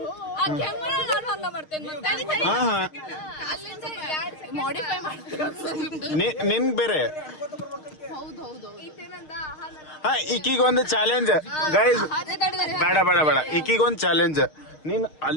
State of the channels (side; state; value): right; late; 6.5 ms